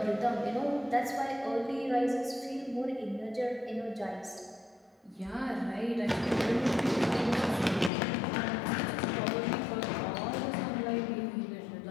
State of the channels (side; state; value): right; drops out; at 7.9 s